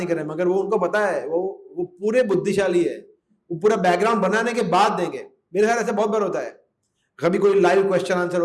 कर रहे हैं, मगर वो उनको पता है, वो पूरे बुद्धिशाली है, वो पूरा बैकग्राउंड बनाने के बाद देंगे। मेरे ख्याल ऐसा बहुत बार होता है, कभी कोई लाइव क्वेश्चन आंसर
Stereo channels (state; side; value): identical; both; correlation 1.00